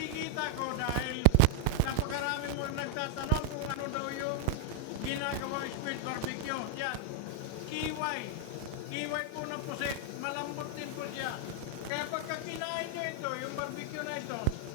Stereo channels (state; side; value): different; both; correlation 0.00